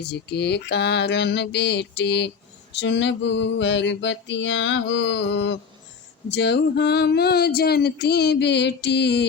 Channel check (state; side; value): quieter; right; 5.9 dB